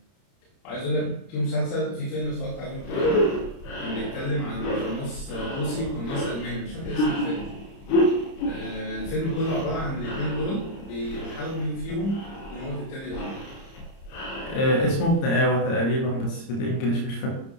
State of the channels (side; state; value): right; late; 30 ms